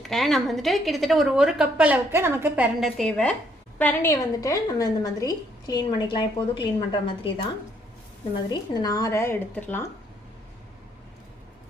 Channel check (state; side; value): normal; both; correlation 0.69